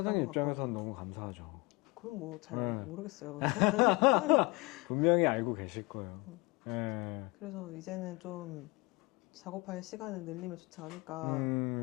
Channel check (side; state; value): right; quieter; 24.8 dB